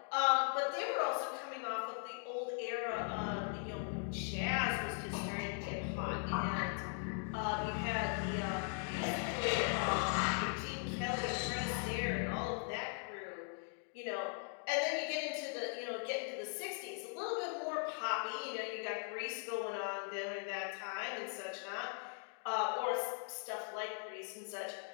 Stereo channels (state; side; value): silent; right; 51 dB below the other